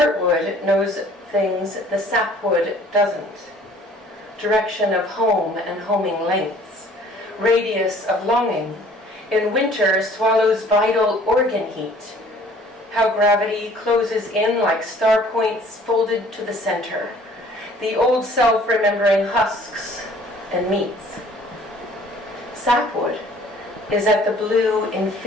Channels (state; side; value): normal; both; correlation 0.54